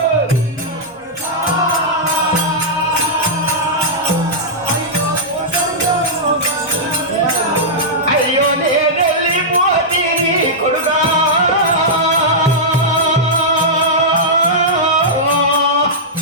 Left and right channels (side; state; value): both; normal; correlation -0.10